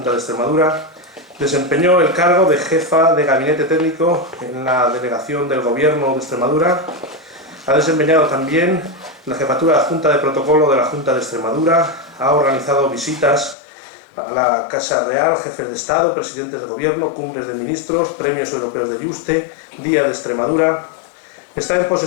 de Extremadura, desempeñó el cargo de jefa de gabinete técnico en la Delegación del Gobierno de Extremadura, ha desempeñado también la jefatura adjunta de protocolo de la Junta de Extremadura, ha organizado visitas a la Casa Real, jefes de Estado, presidentes de Gobierno, cumbres de ministros, premios europeos de Yuste, Día de Extremadura, está en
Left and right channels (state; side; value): drops out; right; at 13.6 s